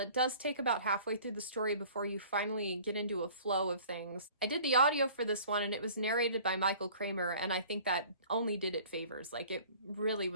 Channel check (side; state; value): both; inverted; correlation -0.48